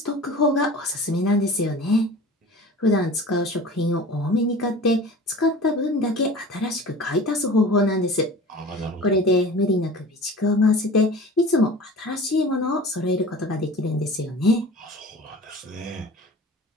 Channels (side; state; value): both; normal; correlation 0.39